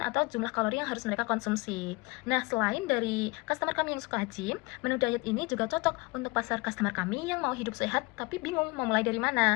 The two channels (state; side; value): quieter; right; 24.8 dB